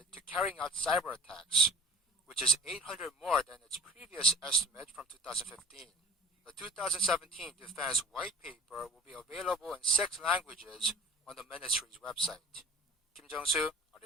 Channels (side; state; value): both; normal; correlation 0.41